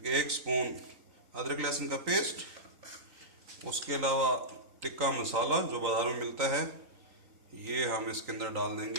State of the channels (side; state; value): left; late; 3.9 ms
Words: 1 स्पून अदरक लहसुन का पेस्ट। उसके अलावा टिक्का मसाला जो बाज़ार में मिलता है ये हम इसके अंदर डाल